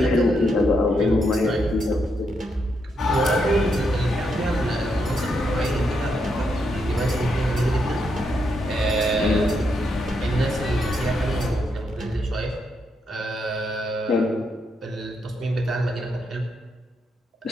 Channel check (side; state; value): both; normal; correlation 0.80